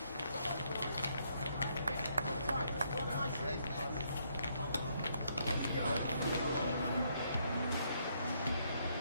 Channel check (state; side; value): inverted; both; correlation -0.73